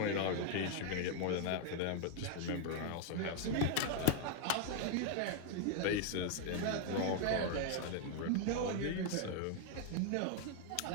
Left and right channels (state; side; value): different; both; correlation 0.01